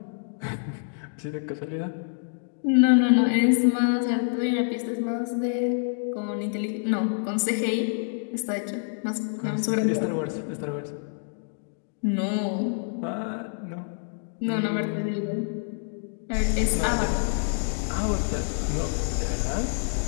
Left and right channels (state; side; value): silent; right; digital silence